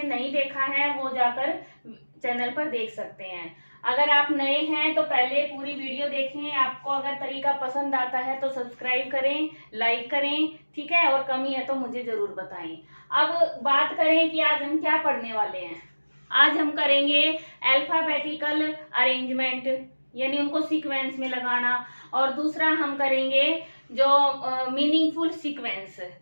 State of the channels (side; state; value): both; inverted; correlation -1.00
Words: नहीं देखा है वो जाकर चैनल पर देख सकते हैं। अगर आप नए हैं तो पहले पूरी वीडियो देखें। आपको अगर तरीका पसंद आता है तो सब्सक्राइब करें, लाइक करें, ठीक है। और कमी है तो मुझे जरूर बताएं। अब बात करें कि आज हम क्या पढ़ने वाले हैं। आज हम करेंगे अल्फाबेटिकल अरेंजमेंट, यानी उनको सीक्वेंस में लगाना। और दूसरा हम करेंगे जो मीनिंगफुल सीक्वेंस,